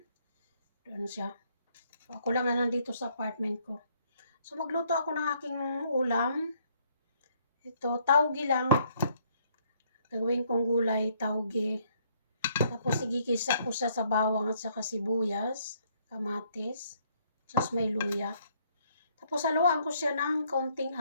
Doon siya. So ako lang na nandito sa apartment ko. So magluto ako ng aking ulam. Ito, taugi lang. Gawin kong gulay, taugi. Tapos igigisa ko siya sa bawang at saka sibuyas, kamatis, tapos may luya. Tapos haluan ko siya ng kaunting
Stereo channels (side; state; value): both; inverted; correlation -0.67